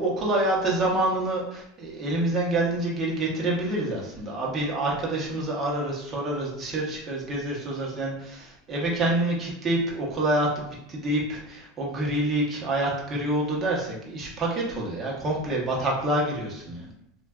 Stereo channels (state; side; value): normal; both; correlation 0.31